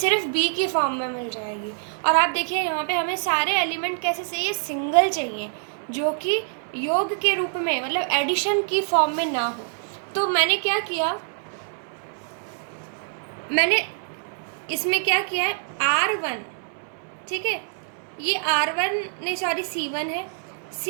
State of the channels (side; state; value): left; silent; digital silence